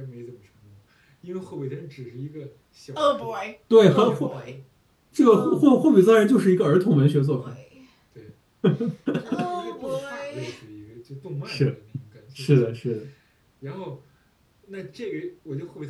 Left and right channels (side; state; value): both; identical; correlation 1.00